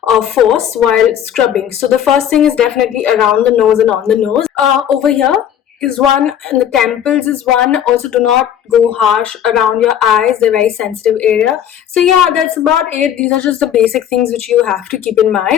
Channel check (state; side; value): quieter; right; 9.8 dB